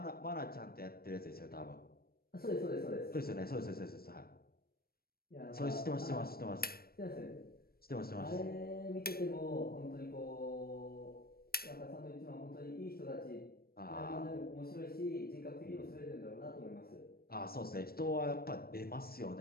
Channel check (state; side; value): late; right; 0.44 ms